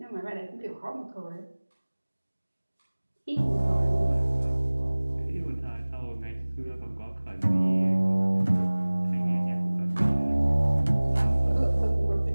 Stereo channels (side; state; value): both; inverted; correlation -1.00